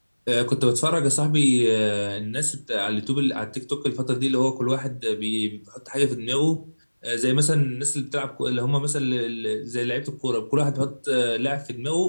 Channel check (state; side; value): inverted; both; correlation -1.00